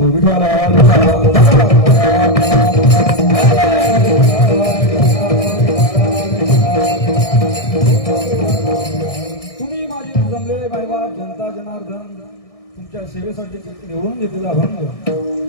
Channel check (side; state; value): right; late; 1.6 ms